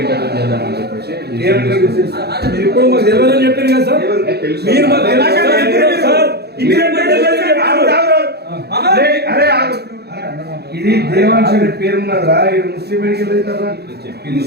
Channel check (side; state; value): left; late; 0.47 ms